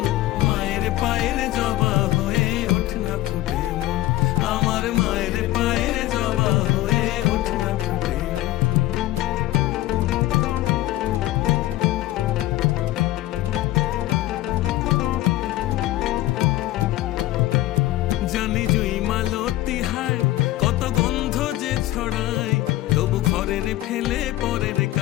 মায়ের পায়ের জবা হয়ে ওঠ না ফুটে মন, আমার মায়ের পায়ের জবা হয়ে ওঠ না ফুটে মন। জানি জুই মালতী হায় কত গন্ধ যে ছড়ায়, তবু ঘরের ফেলে পরে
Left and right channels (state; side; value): quieter; right; 16.2 dB